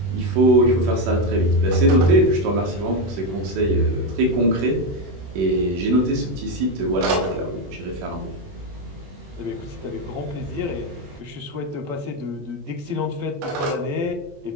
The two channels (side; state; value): left; late; 21 ms